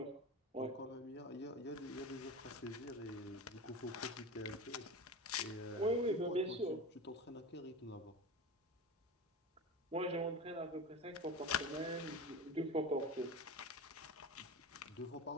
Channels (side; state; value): both; normal; correlation 0.29